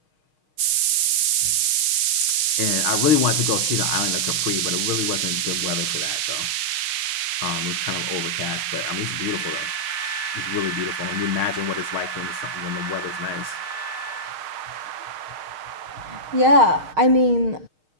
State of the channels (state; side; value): late; left; 6.5 ms